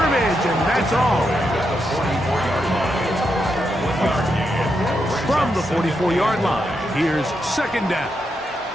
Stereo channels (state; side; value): normal; both; correlation 0.83